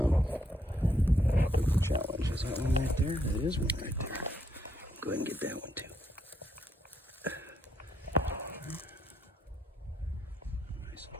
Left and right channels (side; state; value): both; normal; correlation 0.75